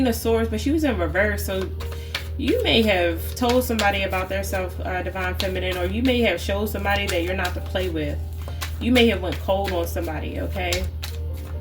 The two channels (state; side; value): identical; both; correlation 1.00